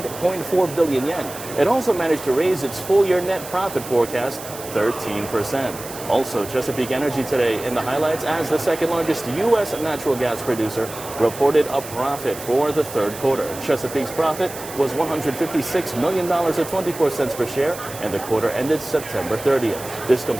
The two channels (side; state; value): right; noise; hiss, 13 dB below the sound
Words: billion yen. It also managed to raise its full-year net profit forecast 13%. Also, Chesapeake Energy today in the highlights as the second largest U.S. natural gas producer reported a profit for the third quarter. Chesapeake's profit was $156 million at 24 cents per share, and the quarter ended September 30th. This